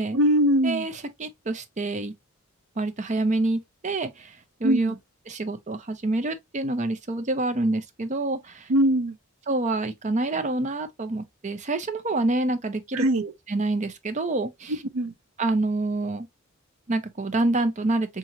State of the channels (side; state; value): both; normal; correlation 0.48